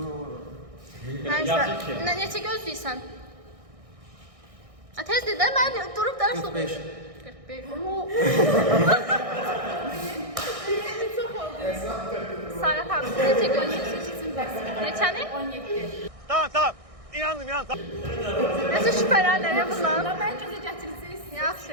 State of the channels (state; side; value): late; left; 1.6 ms